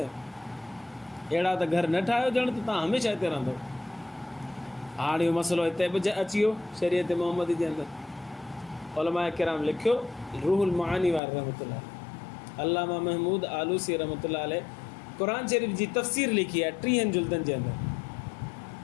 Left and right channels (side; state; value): right; drops out; at 11.2 s